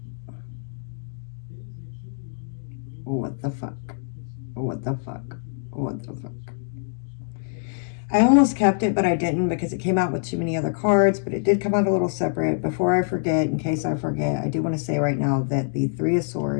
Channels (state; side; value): silent; right; digital silence